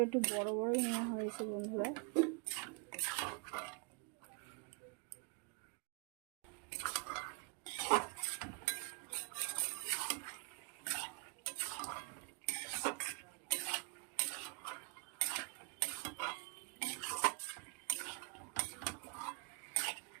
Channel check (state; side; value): quieter; left; 33.7 dB